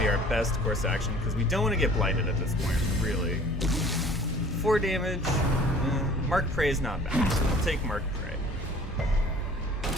our best course of action because we don't want to get blighted at this point, really. 4 damage. Mark Prey is not bad. We'll take Mark Prey.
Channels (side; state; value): both; normal; correlation 0.49